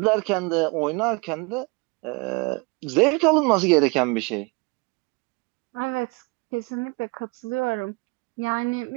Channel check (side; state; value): left; quieter; 28.4 dB